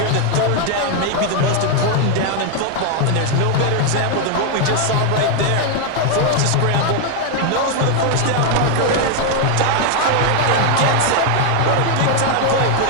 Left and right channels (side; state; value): both; different; correlation 0.01